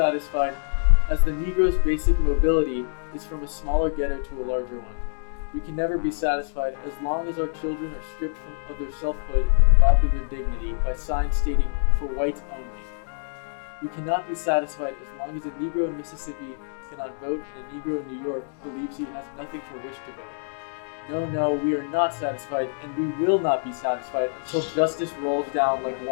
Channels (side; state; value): right; silent; digital silence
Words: as the Negro's basic mobility is from a smaller ghetto to a larger one. We can never be satisfied as long as our children are stripped of their selfhood and robbed of their dignity by signs stating, "For whites only." We cannot be satisfied as long as a Negro in Mississippi cannot vote and a Negro in New York believes he has nothing for which to vote. No, we are not satisfied, and we will not be satisfied until justice rolls down like